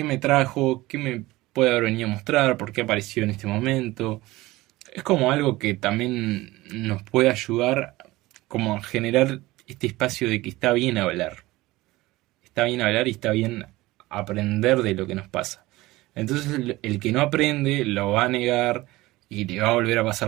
me trajo? ¿Qué me puede haber venido a mostrar? ¿Por qué apareció en este momento? Es como algo que también nos puede ayudar como a generar este espacio de que está bien hablar. Está bien hablar y está bien aprender de lo que nos pasa. Entonces el que no aprende lo va a negar y le va a volver a pasar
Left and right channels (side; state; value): left; quieter; 19.1 dB